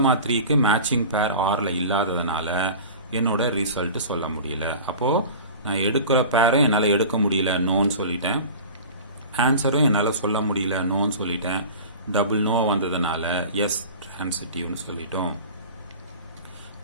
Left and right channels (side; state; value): both; inverted; correlation -0.37